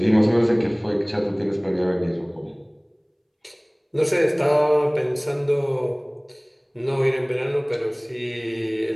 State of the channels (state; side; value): identical; both; correlation 1.00